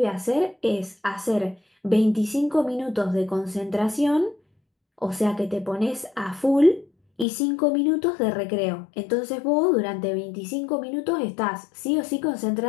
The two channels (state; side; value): drops out; right; at 7.2 s